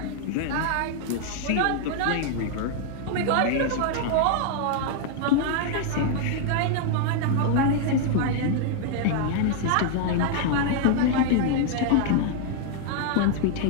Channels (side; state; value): both; different; correlation 0.00